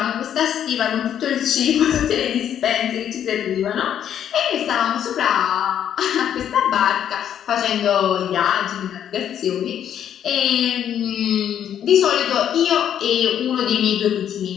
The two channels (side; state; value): right; quieter; 9.7 dB